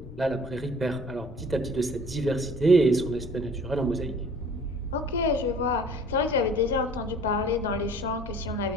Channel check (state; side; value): noise; left; rumble, 15 dB below the sound